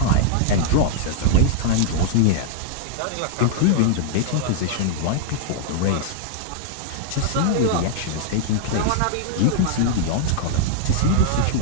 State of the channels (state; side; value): different; both; correlation -0.01